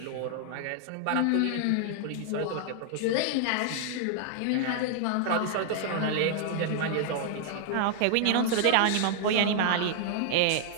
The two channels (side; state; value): both; different; correlation 0.00